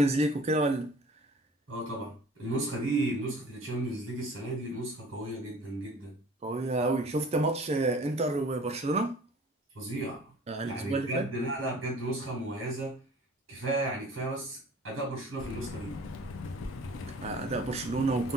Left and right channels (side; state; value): both; normal; correlation 0.48